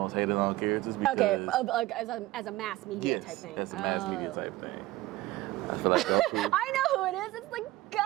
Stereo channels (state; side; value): quieter; left; 17.6 dB